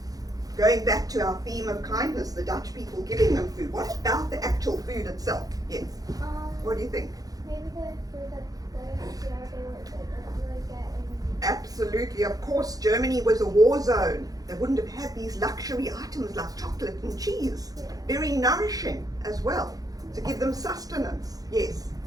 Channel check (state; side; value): late; left; 0.18 ms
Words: Going back to our theme of kindness, the Dutch people giving them food. What about the actual food itself? Yes. What do you think? Maybe the food that they don't really get in. Absolutely, of course, Germany was a war zone. They wouldn't have had these luxury items like chocolate and cheese. Very nourishing as well, to give them sustenance. Yes.